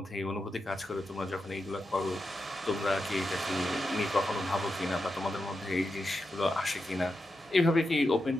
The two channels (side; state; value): both; normal; correlation 0.88